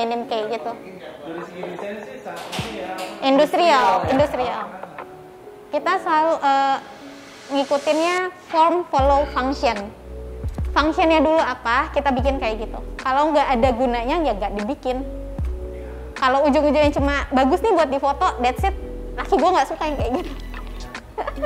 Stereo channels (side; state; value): both; identical; correlation 1.00